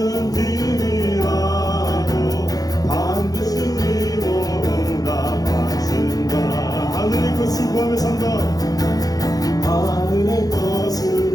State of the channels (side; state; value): right; late; 0.18 ms